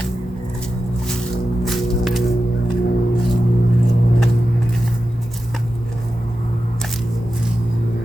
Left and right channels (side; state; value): both; normal; correlation 0.92